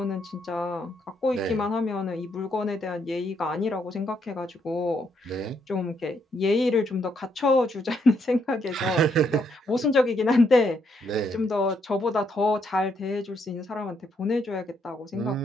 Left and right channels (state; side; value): normal; both; correlation 0.75